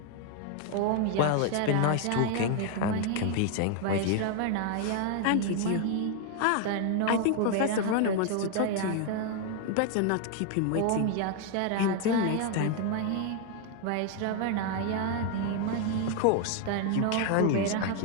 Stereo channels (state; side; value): different; both; correlation 0.01